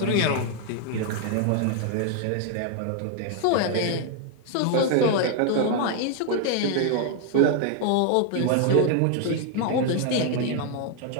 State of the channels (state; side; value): different; both; correlation 0.00